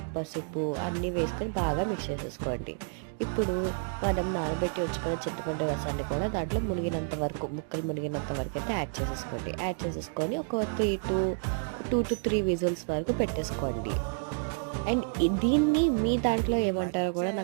పసుపు అన్నీ వేసుకొని బాగా మిక్స్ చేసేసుకోండి. ఇప్పుడు మనం నానబెట్టి ఉంచుకున్న చింతపండు రసాన్ని కూడా దాంట్లో మునిగినంత వరకు, ముక్కలు మునిగినంత వరకైతే యాడ్ చేసేసుకోండి. యాడ్ చేసేసుకొని ఒక 2-3 విజిల్స్ వరకు పెట్టేసుకోండి. అండ్ దీన్ని మీ దాంట్లో ఏమంటారో కూడా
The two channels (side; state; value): left; silent; digital silence